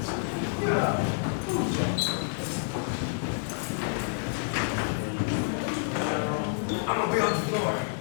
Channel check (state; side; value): silent; right; digital silence